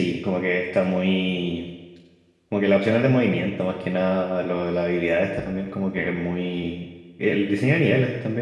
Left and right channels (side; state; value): both; identical; correlation 1.00